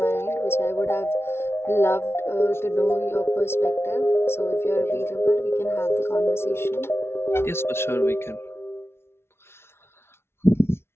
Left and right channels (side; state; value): right; late; 0.12 ms